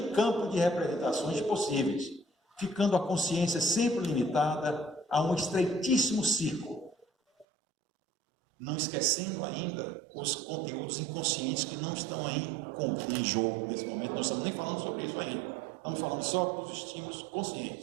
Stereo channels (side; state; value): left; drops out; at 7.5 s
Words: campo de representações possíveis, ficando a consciência sempre limitada a um estreitíssimo círculo, não esquecendo ainda os conteúdos inconscientes que não estão aí em jogo nesse momento. Não estamos nem falando sobre isso ainda, estamos falando só dos estímulos